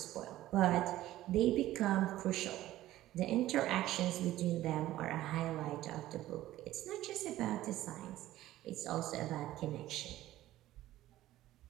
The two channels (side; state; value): left; quieter; 14.8 dB